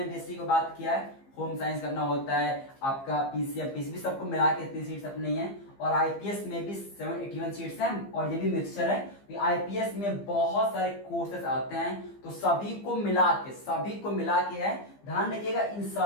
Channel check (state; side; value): late; right; 15 ms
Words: बीएससी को बात किया है, होम साइंस करना होता है आपका, पीसीएम पीसीबी सबको मिला के इतनी सीट्स अपनी हैं, और आईपीएस में भी 781 सीट्स हैं, और ये भी मिक्सचर है, आईपीएस में बहुत सारे कोर्सेस आते हैं, तो सभी को मिला के है। ध्यान रखिएगा इन